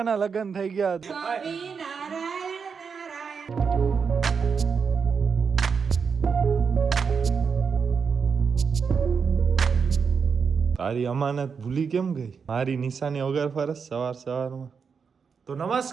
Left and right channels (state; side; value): quieter; left; 5.9 dB